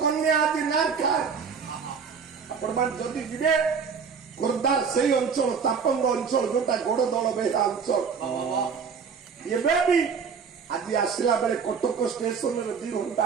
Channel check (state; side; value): quieter; left; 6.1 dB